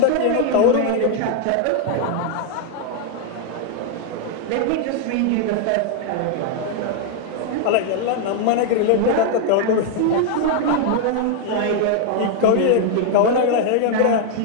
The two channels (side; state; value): both; different; correlation 0.00